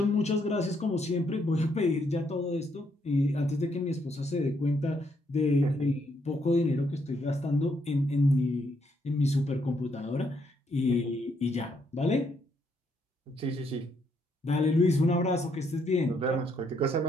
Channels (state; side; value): normal; both; correlation 0.74